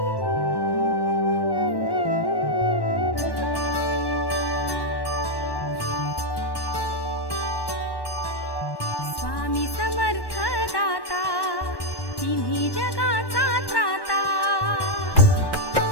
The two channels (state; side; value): late; right; 1.1 ms